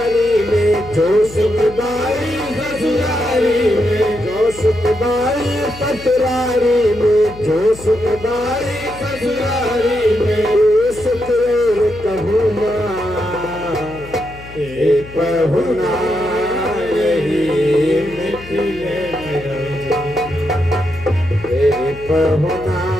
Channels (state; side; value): noise; left; hum, 17 dB below the sound